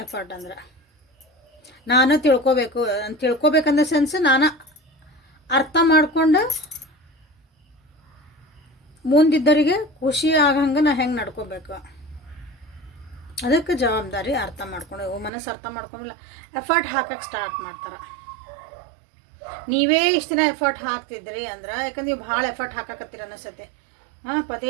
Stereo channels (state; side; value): drops out; left; at 15.3 s